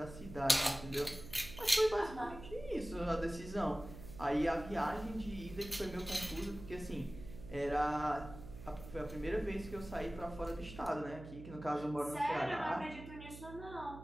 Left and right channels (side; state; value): right; noise; hum, 13 dB below the sound